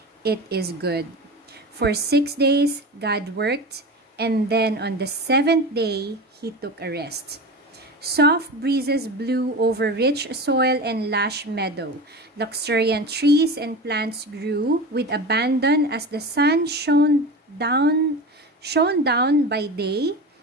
"It is good." For 6 days, God worked, and then on the 7th day, He took a rest. Soft breezes blew over rich soil and lush meadow. Luxuriant trees and plants grew with abandon as the sun shone down by day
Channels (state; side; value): normal; both; correlation 0.28